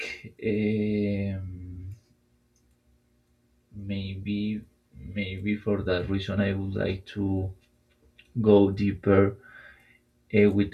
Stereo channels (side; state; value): both; identical; correlation 1.00